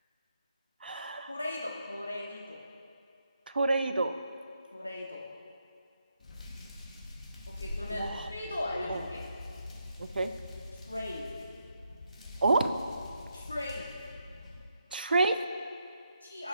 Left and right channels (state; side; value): inverted; both; correlation -0.80